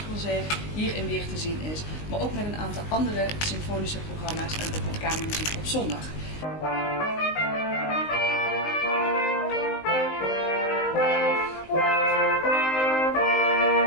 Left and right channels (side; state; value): right; late; 19 ms